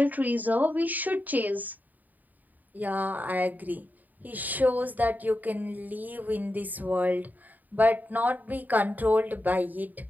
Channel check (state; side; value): late; left; 0.083 ms